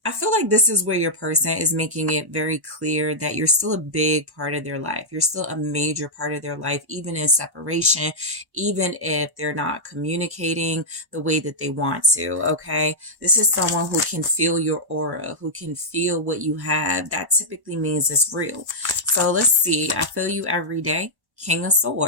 feel like this is where your person is making it very clear that you're still a big part of their life. You're still a major part of their life, even in separation, even if they're not communicating the way that they want to. Okay. This is someone who can feel your aura, who can feel what you have. That typically means it's real. So let's see. I feel you every day. King of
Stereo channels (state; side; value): late; left; 1.1 ms